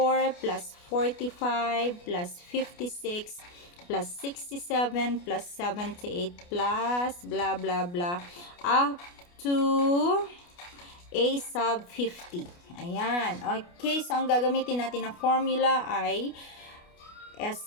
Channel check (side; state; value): right; late; 29 ms